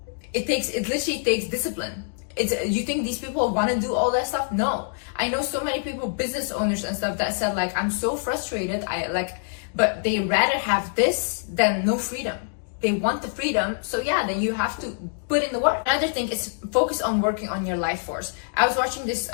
It literally takes discipline. You think these people want to do all that stuff? No. I know so many people, business owners and stuff, that said like, I'm so frustrated. But they rather have this than no freedom. They want the freedom, so yeah, then you have to put in the work. Another thing is focus on working on your life force. I was watching this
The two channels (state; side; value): silent; right; digital silence